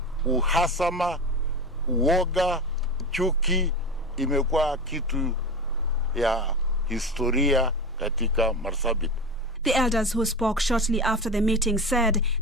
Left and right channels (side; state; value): both; normal; correlation 0.25